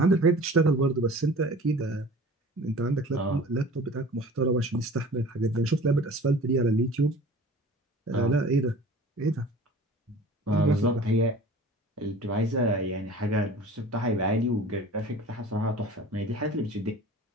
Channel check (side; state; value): both; normal; correlation 0.43